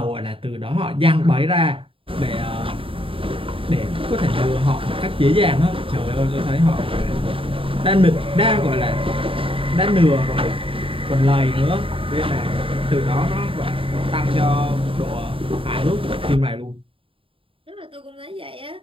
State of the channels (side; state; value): left; late; 0.26 ms